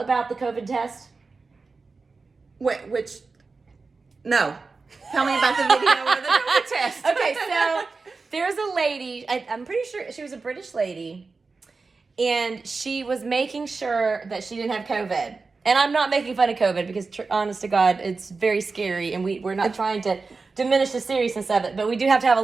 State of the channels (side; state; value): left; quieter; 4.2 dB